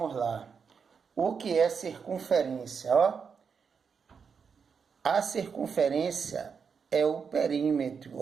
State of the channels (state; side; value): quieter; left; 6.1 dB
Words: lá. O que é circunferência? A circunferência é o perímetro,